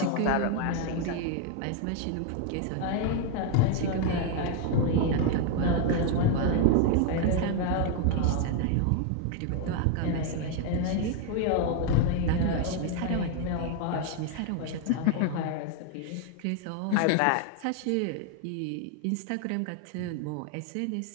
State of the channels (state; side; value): different; both; correlation 0.01